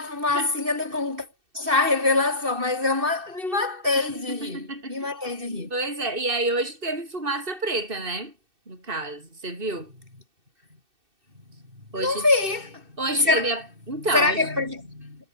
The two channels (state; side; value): late; left; 2.6 ms